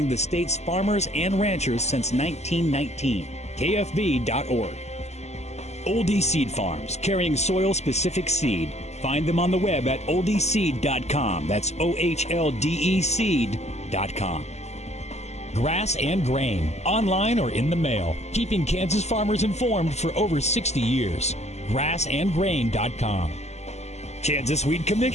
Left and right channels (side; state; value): right; late; 0.32 ms